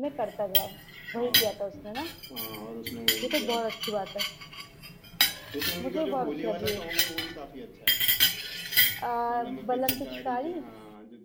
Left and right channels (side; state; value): both; identical; correlation 1.00